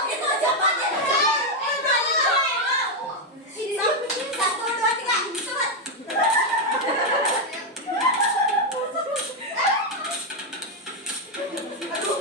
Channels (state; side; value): normal; both; correlation 0.03